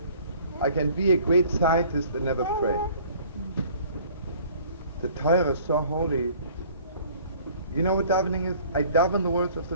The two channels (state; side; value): inverted; both; correlation -0.53